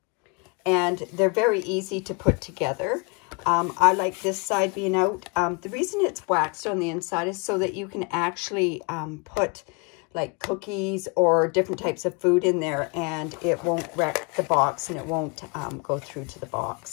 and they're very easy to put together. I like this side being out. The reason it's waxed on the inside is so that you can actually put like cookies or different types of food in there, and it won't wreck the box and it won't go through to the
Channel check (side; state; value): right; quieter; 31.7 dB